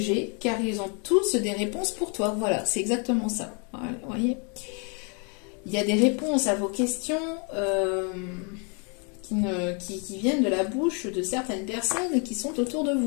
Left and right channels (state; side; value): quieter; right; 36.7 dB